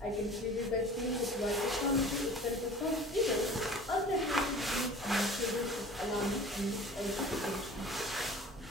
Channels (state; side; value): normal; both; correlation 0.43